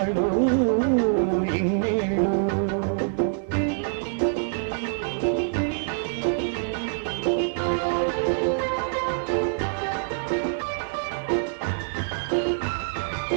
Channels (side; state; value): left; silent; digital silence